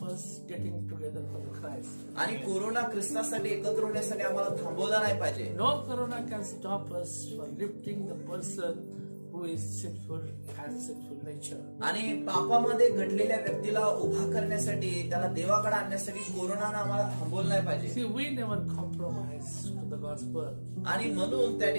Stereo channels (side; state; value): both; inverted; correlation -1.00